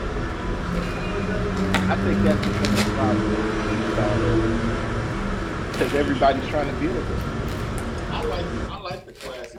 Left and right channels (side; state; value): both; identical; correlation 1.00